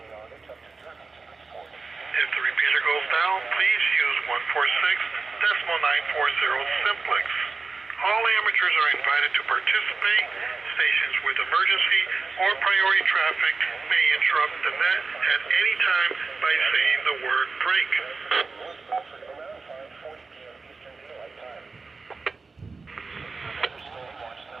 If the repeater goes down, please use 146.940 simplex. All amateurs are invited to participate. Stations with emergency or priority traffic may interrupt the net at any time by saying the word break.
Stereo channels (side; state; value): left; quieter; 4.2 dB